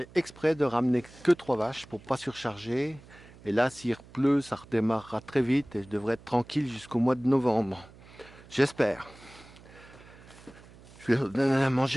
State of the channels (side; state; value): right; noise; hum, 22 dB below the sound